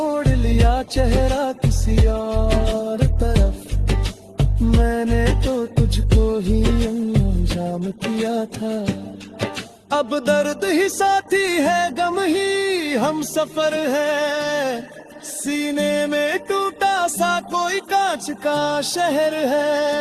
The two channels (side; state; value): both; identical; correlation 1.00